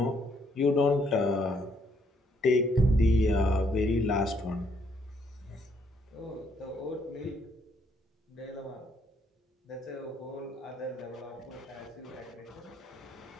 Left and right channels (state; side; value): normal; both; correlation 0.70